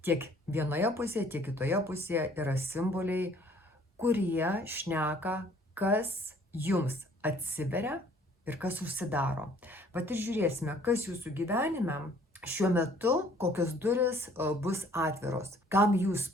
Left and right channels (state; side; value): normal; both; correlation 0.57